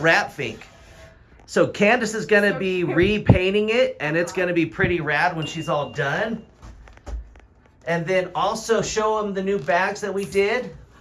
fink. So Candace is going to be repainting it, and it's going to be pretty rad when she's all done. And then also show them the new bags that we did.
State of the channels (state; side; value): identical; both; correlation 1.00